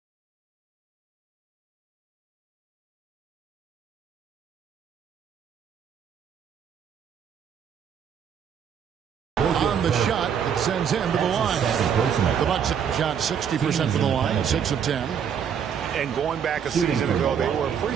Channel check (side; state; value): left; quieter; 7.9 dB